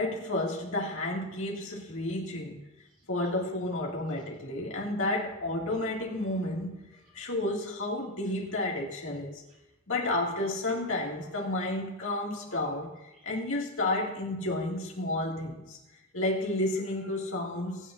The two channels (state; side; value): normal; both; correlation 0.10